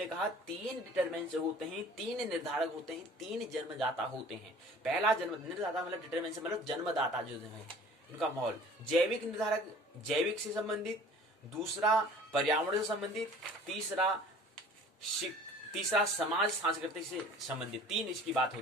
कहा 3 डिटरमिनेंट्स होते हैं, 3 निर्धारक होते हैं, 3 जन्मदाता होते हैं। पहला निर्धाता मतलब डिटरमिनेंट्स मतलब जन्मदाता जो है उनका माहौल, जैविक निर्धारक जैविक से संबंधित, दूसरा पर्यावरण से संबंधित, तीसरा समाज सांस्कृतिक से संबंधित, 3 इसकी बात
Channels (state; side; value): normal; both; correlation 0.47